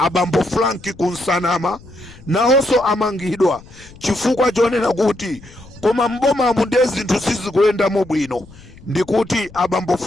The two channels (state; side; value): noise; left; rumble, 21 dB below the sound